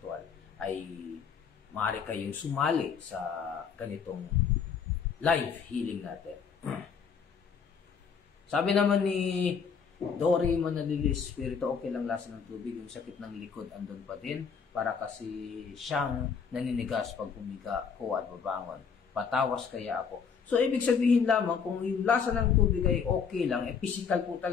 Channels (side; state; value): right; quieter; 6.3 dB